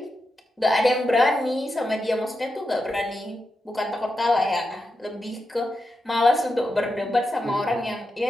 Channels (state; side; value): normal; both; correlation 0.88